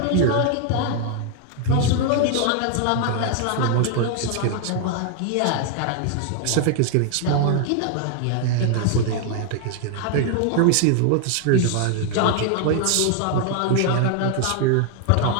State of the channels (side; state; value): both; different; correlation 0.00